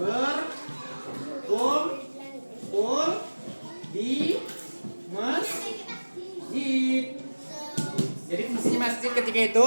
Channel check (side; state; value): both; inverted; correlation -1.00